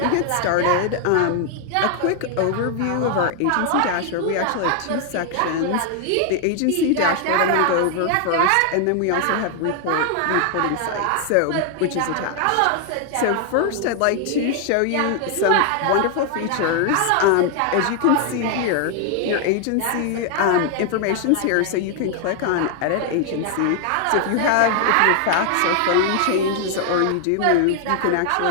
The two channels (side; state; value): both; different; correlation 0.00